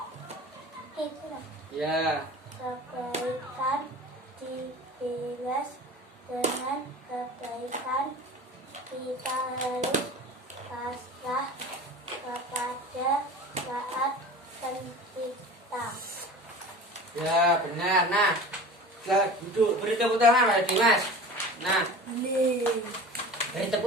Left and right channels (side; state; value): both; normal; correlation 0.37